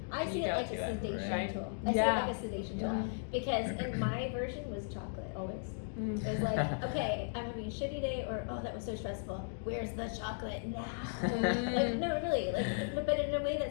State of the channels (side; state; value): right; silent; digital silence